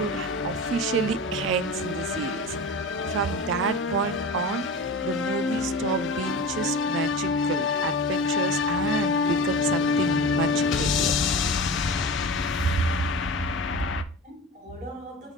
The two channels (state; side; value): normal; both; correlation 0.30